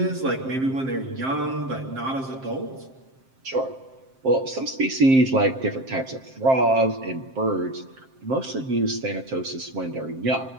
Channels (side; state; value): left; late; 7.6 ms